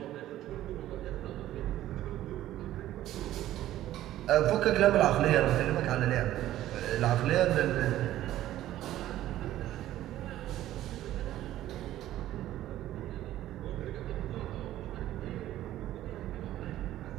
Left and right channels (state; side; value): quieter; left; 13.7 dB